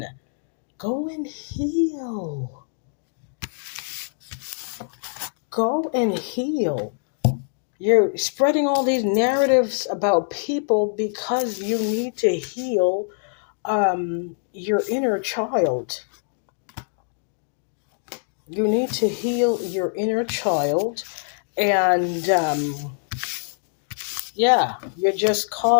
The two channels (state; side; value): silent; right; digital silence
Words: Go and heal. Go and heal. You're spreading all these narratives about people because you need to heal your inner child. You need to heal your inner child. And yeah, you're just